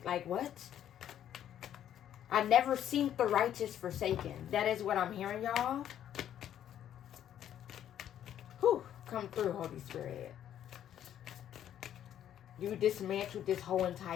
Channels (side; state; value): right; quieter; 10.6 dB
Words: Like, what? I never seen the righteous forsaken. That is what I'm hearing, y'all. Whew. Come through, Holy Spirit. You dismantled this whole